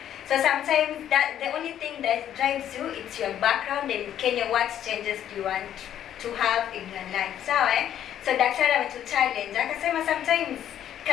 So sometimes that the only thing that drives you, it's your background, and Kenya, what changes do you want to have in your life. Sawa So daktari ametuchallenge akasema sometimes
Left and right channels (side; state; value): right; quieter; 10.6 dB